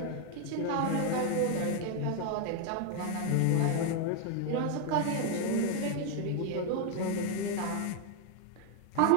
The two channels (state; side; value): different; both; correlation 0.01